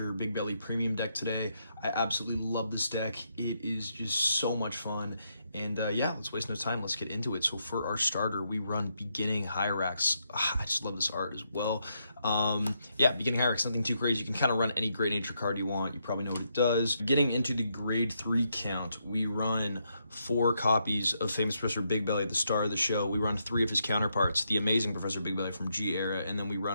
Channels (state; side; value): inverted; both; correlation -0.79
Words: Bigbelly premium deck today. I absolutely love this deck. It is just so much fun. And yeah, let's waste no time. Let's get into it. So for our starter, we run Beginning Hyrax. I just love this art as well. Yeah, Beginning Hyrax, nothing too crazy. You can kind of run any Great Nature card you want. You probably know what it does. Getting into the grade 3 count, we run 4 copies of Famous Professor Bigbelly, the star of the show. We run 3 of his counterparts, the amazing Professor Bigbelly from G Era, and then we